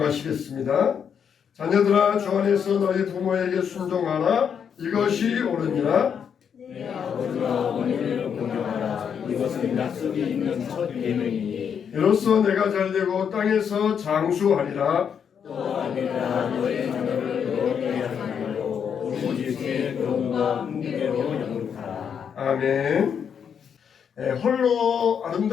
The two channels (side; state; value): right; quieter; 7.5 dB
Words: 자녀들아, 주 안에서 너희 부모에게 순종하라. 이것이 옳으니라. 내 아버지와 어머니를 공경하라. 이것은 약속이 있는 첫 계명이니 이로써 내가 잘되고 땅에서 장수하리라. 또하니라. 너의 자녀를 너에게 하나로 오직 제 교훈과 훈계로 영육하라. 아멘. 홀로